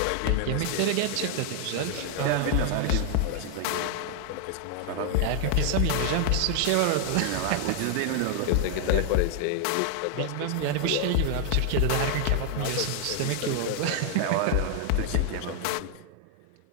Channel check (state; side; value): different; both; correlation 0.00